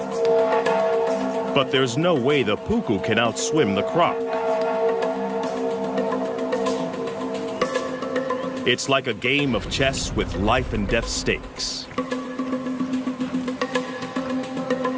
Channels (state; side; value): identical; both; correlation 1.00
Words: But there's no way the puku can outswim the croc. It's like a game of chess with life and death stakes.